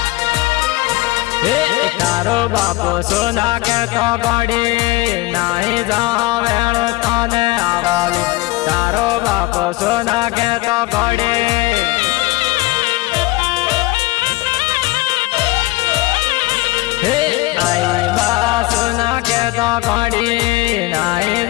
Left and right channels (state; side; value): quieter; right; 19.8 dB